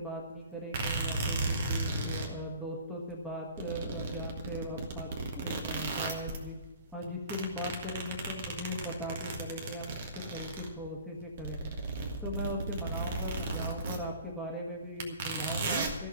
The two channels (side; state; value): both; inverted; correlation -0.46